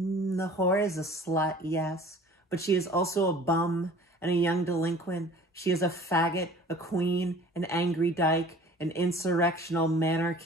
whore is a slut, yes, but she is also a bum and a young delinquent. She is a faggot, a queen, an angry dyke, an insurrectional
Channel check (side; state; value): both; normal; correlation 0.47